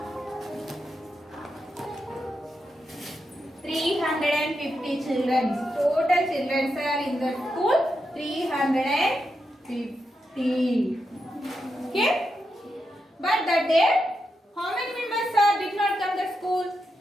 350 children. Total children are in the school 350. Okay? But that day, how many members did not come to school?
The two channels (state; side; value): normal; both; correlation 0.86